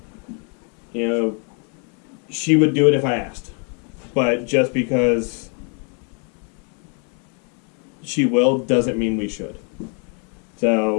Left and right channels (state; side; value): quieter; right; 38.7 dB